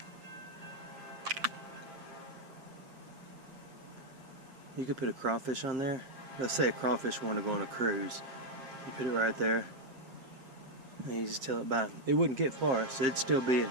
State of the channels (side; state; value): left; late; 7.7 ms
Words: You could put a crawfish on there. Let's say a crawfish wanted to go on a cruise. You put it right there. And you just tell it by. It wouldn't get far, so it'd still be